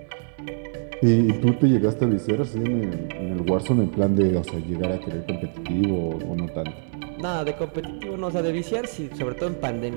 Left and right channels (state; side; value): silent; left; digital silence